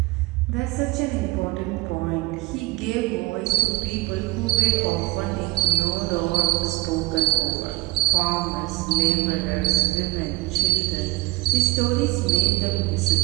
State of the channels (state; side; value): quieter; left; 20.8 dB